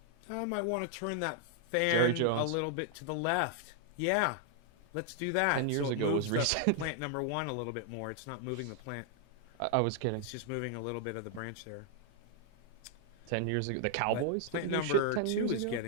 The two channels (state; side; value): different; both; correlation 0.00